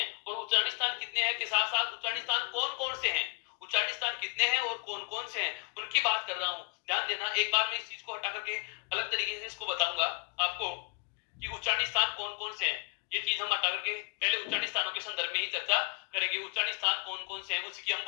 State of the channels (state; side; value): quieter; right; 34.2 dB